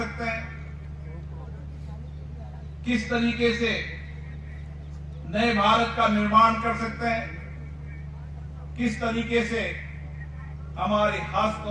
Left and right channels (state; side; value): identical; both; correlation 1.00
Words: हैं, किस तरीके से नए भारत का निर्माण कर सकते हैं, किस तरीके से हमारे हस्त